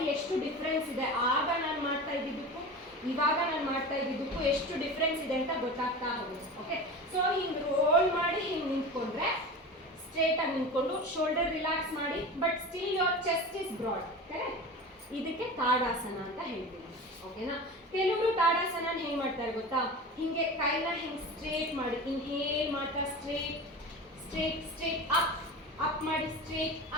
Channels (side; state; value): both; normal; correlation 0.31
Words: ಎಷ್ಟು ಡಿಫ್ರೆನ್ಸ್ ಇದೆ, ಆಗ ನಾನು ಮಾಡ್ತಾ ಇದ್ದಿದ್ದಕ್ಕೂ ಇವಾಗ ನಾನು ಮಾಡ್ತಾ ಇದ್ದಿದ್ದಕ್ಕೂ ಎಷ್ಟು ಡಿಫ್ರೆನ್ಸ್ ಇದೆ ಅಂತ ಗೊತ್ತಾಗ್ತಾ ಹೋಗುತ್ತೆ. ಓಕೆ, ಸೊ ಹಿಂಗೆ ರೋಲ್ ಮಾಡಿ ಹಿಂಗೆ ನಿಂತ್ಕೊಂಡ್ರೆ, ಸ್ಟ್ರೇಟಾಗಿ ನಿಂತ್ಕೊಂಡು ಶೋಲ್ಡರ್ ರಿಲ್ಯಾಕ್ಸ್ ಮಾಡಿ, but still your chest is broad, correct? ಇದಕ್ಕೆ ತಾಡಾಸನ ಅಂತ ಹೇಳ್ತೀವಿ. ಓಕೆನಾ? ಕೆಲವರು ತಾಡಾಸನ ಹೆಂಗೆ ಮಾಡ್ತಾರೆ ಗೊತ್ತಾ, ಹಿಂಗೆ ಕೈನ ಹಿಂಗೆ ಸ್ಟ್ರೇಟ್ ಮಾಡಿ, ಇನ್ಹೇಲ್ ಮಾಡ್ತಾ ಸ್ಟ್ರೇಟ್ ಸ್ಟ್ರೇಟ್ ಸ್ಟ್ರೇಟ್ ಅಪ್ ಮಾಡಿ, ಸ್ಟ್ರೇಟ್